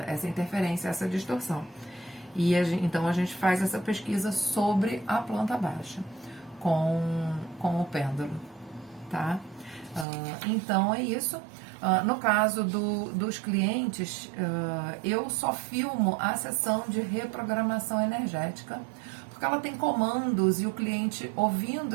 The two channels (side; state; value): left; drops out; at 10.1 s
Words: interferência, essa distorção. E então a gente faz essa pesquisa sobre a planta baixa com o pêndulo, tá? Então é isso. No caso dos clientes, eu só filmo a sessão de reprogramação energética, porque ela tem comandos e o cliente,